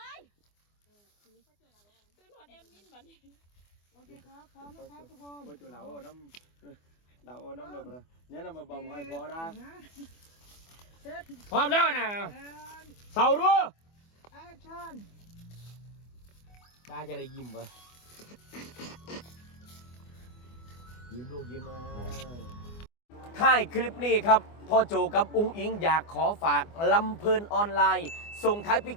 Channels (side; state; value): right; late; 24 ms